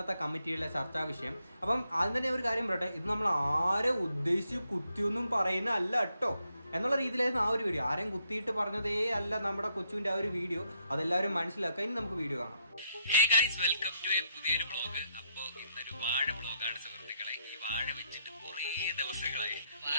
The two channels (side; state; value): both; inverted; correlation -0.75